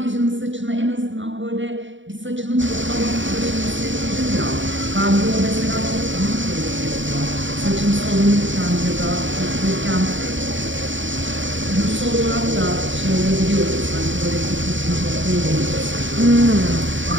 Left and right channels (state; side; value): late; left; 0.55 ms